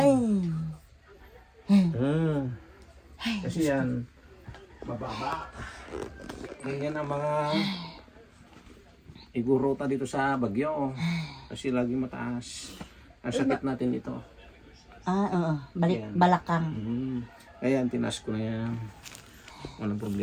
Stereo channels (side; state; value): both; identical; correlation 1.00